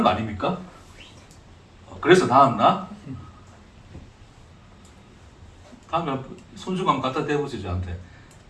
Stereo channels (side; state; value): both; identical; correlation 1.00